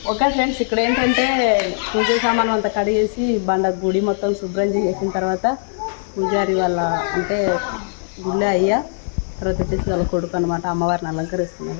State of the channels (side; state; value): right; silent; digital silence